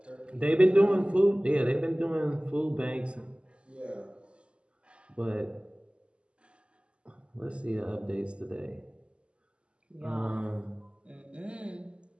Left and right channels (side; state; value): left; late; 0.053 ms